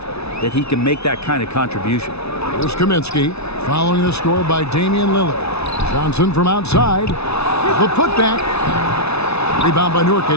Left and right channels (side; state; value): right; late; 0.80 ms